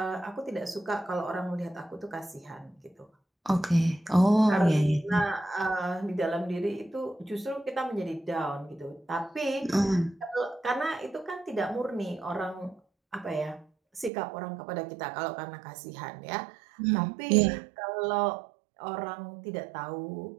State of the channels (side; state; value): left; drops out; at 14.1 s